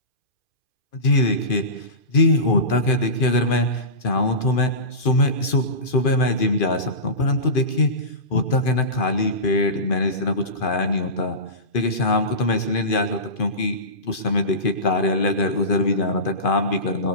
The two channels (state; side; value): late; right; 2.5 ms